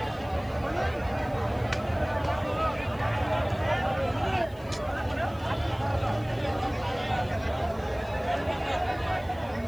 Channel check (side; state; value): left; noise; hiss, 26 dB below the sound